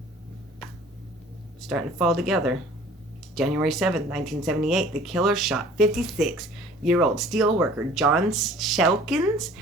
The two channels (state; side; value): normal; both; correlation 0.49